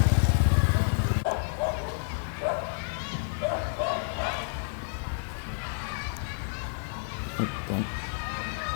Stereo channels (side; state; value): right; silent; digital silence